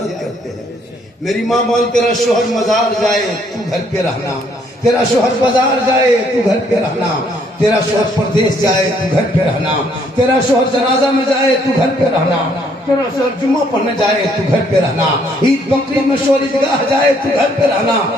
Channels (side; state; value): both; normal; correlation 0.67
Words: करते हैं। मेरी माँ बोल, तेरा शोहर मजार जाए तू घर पे रहना, तेरा शोहर बाजार जाए तू घर पे रहना, तेरा शोहर प्रदेश जाए तू घर पे रहना, तेरा शोहर जनाजा में जाए तू घर पे रहना, तेरा शोहर जुम्मा पढ़ने जाए तू घर पे रहना, ईद बकरीद में शोहर ईदगाह जाए तू घर पे रहना।